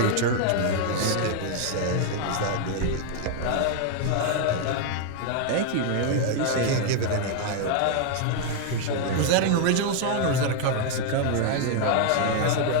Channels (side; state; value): both; different; correlation 0.00